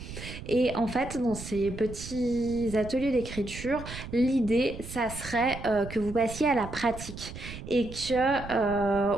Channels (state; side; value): noise; right; rumble, 11 dB below the sound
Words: Et en fait, dans ces petits ateliers d'écriture, l'idée, ça serait que vous passiez à la pratique et